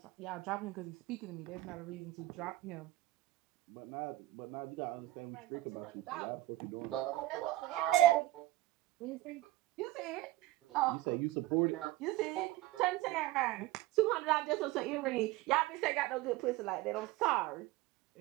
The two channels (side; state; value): left; quieter; 17.0 dB